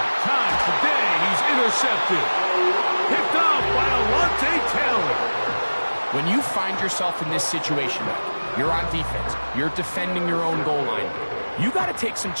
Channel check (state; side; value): inverted; both; correlation -1.00